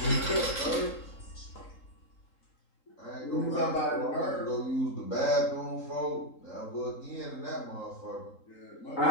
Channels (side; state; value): right; late; 3.8 ms